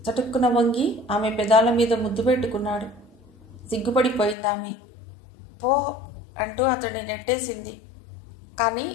చటుక్కున వంగి ఆమె పెదాల మీద ముద్దు పెట్టుకున్నాడు. సిగ్గుపడిపోయిందామె. పో అంటూ అతన్ని నెట్టేసింది. కానీ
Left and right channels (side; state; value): right; drops out; at 4.4 s